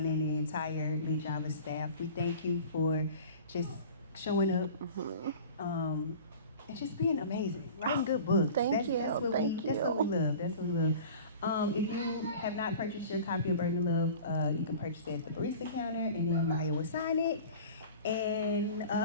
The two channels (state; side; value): inverted; both; correlation -0.40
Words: and the entire LitJava staff, we thank you for just showing up and just being amazing, writing good books. Thank you. That's what we love. If you have not purchased your copy of Burden of Love, you can purchase it at the barista counter, and then Maya will sign it. And,